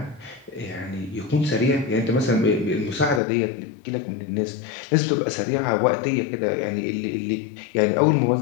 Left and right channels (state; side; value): drops out; right; at 3.2 s